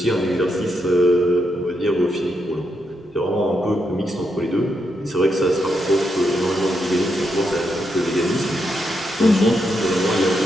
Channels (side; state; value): both; normal; correlation 0.81